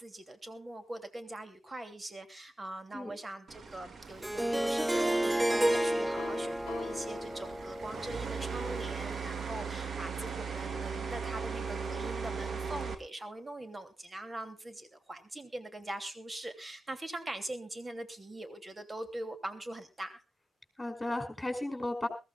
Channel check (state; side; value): normal; both; correlation 0.93